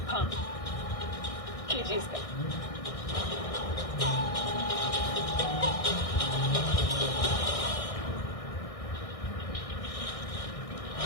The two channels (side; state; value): right; late; 1.6 ms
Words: हाँ, कीजिए इसका।